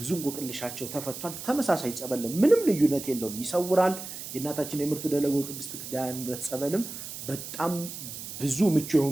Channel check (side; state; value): right; noise; hiss, 9 dB below the sound